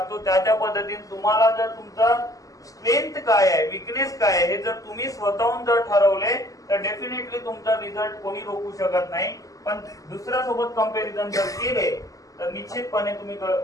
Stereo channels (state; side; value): late; right; 0.17 ms